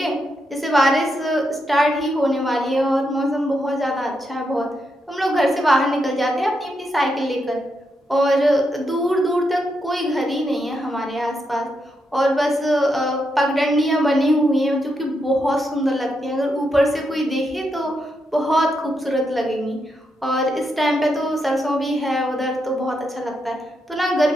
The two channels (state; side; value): normal; both; correlation 0.82